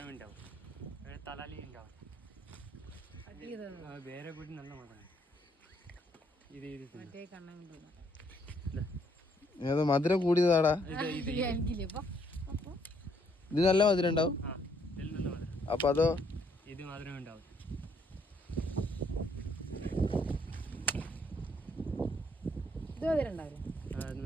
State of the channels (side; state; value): both; normal; correlation 0.69